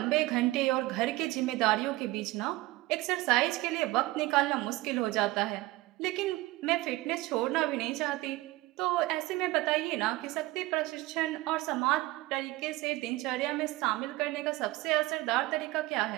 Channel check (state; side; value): quieter; left; 19.1 dB